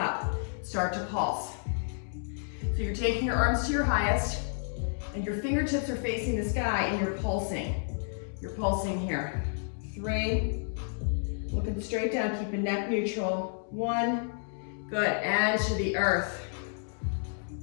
Start to pulse. So you're taking your arms to your highest, and your fingertips are facing the sky, and you're pulsing. You're pulsing here. 3, looking straight down, keeping neck neutral. 1, good, and to the earth.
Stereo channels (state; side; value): silent; right; digital silence